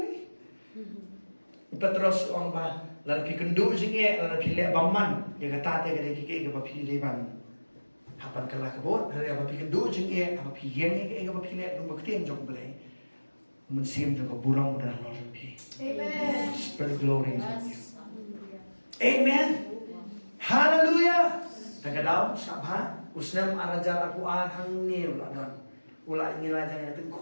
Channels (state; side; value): inverted; both; correlation -1.00